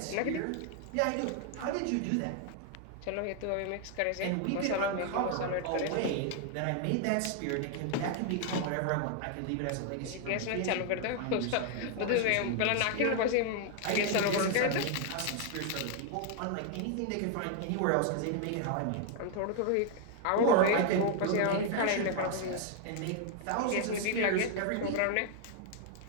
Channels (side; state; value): both; different; correlation 0.00